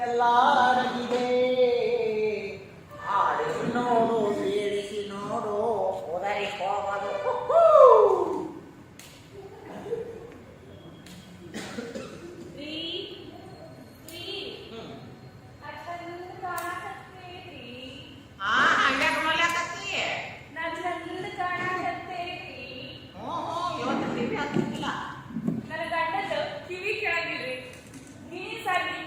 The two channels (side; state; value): both; identical; correlation 1.00